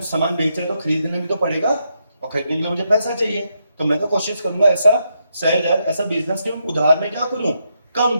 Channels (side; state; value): both; inverted; correlation -0.81